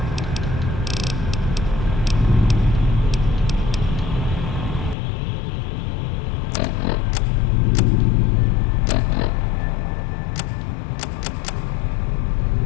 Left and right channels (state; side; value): drops out; right; at 5.0 s